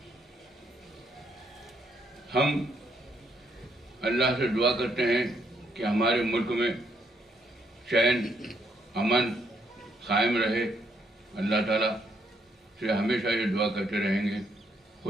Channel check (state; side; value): normal; both; correlation 0.73